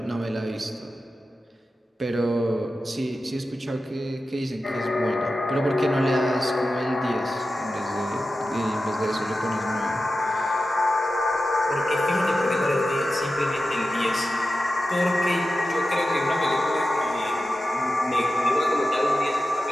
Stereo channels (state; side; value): normal; both; correlation 0.92